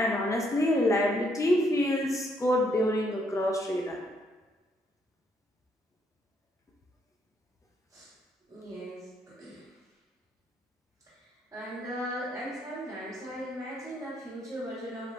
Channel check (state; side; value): normal; both; correlation 0.72